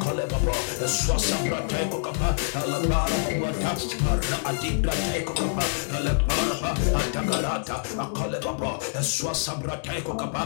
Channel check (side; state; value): right; silent; digital silence